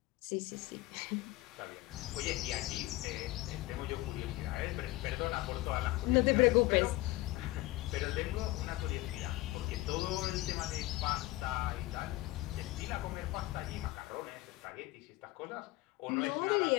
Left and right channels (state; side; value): quieter; right; 19.0 dB